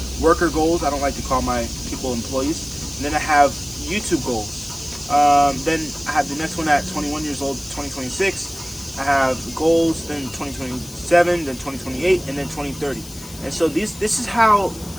Worker goals. I don't like to call my people employees. And then I have YouTube goals. Then I have the next one at 21 years old, 2026. I have goals, then 2027, then 2028, and then 2030. And so this is how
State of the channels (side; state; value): left; noise; hiss, 17 dB below the sound